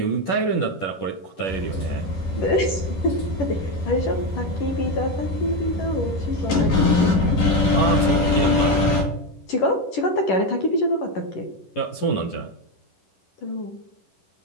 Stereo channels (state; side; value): late; right; 11 ms